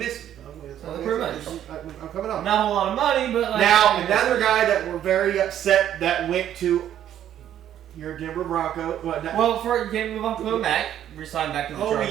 me. I'm coming on. Not a whole lot of money, but like... Now, another guy that we're very upset that went to your Denver Broncos. Well, for game move on to Mac, resigned back to the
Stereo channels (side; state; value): left; quieter; 10.9 dB